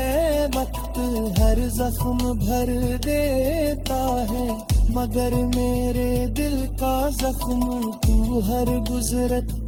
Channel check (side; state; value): both; identical; correlation 1.00